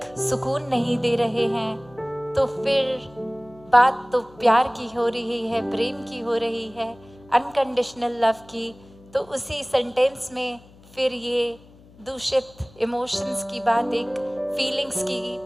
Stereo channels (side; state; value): left; noise; hum, 25 dB below the sound